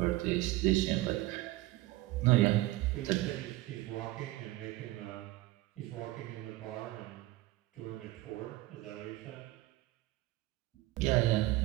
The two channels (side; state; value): left; quieter; 17.8 dB